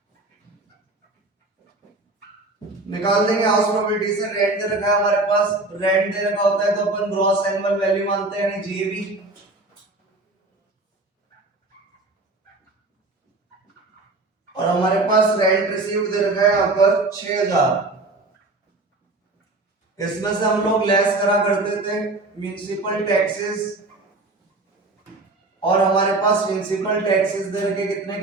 निकाल देंगे हाउस प्रॉपर्टी से। रेंट दे रखा है हमारे पास, रेंट दे रखा होता है तो अपन ग्रॉस एनुअल वैल्यू मानते हैं यानी जीएवी। और हमारे पास रेंट रिसीव्ड दे रखा है यहाँ पर 6000। इसमें से हम लोग लेस करा करते थे म्युनिसिपल टैक्सेस, और हमारे पास म्युनिसिपल टैक्सेस दे रखे कितने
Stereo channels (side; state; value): left; quieter; 3.0 dB